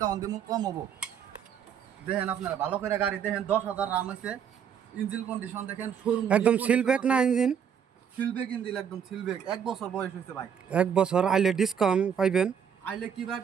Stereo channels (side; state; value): left; quieter; 8.0 dB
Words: দিব, কম হবো। দেখেন আপনারা ভালো করে গাড়ি দেখেন, 10,000 রান হয়েছে। ইঞ্জিন কন্ডিশন দেখেন, শোরুম একদম সিলব্যাক না ইঞ্জিন? সিলবেক ইঞ্জিন, একদম সিলবেক। এক বছর বয়স হয়েছে ভাই। এক বছর আইলে ডিসকাউন্ট পাইবেন। আইলে কিবা